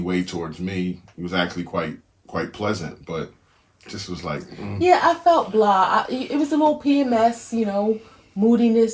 towards me. It was actually quite pleasant, but just was like. Yeah, I felt blah. It was a little PMS,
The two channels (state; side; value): identical; both; correlation 1.00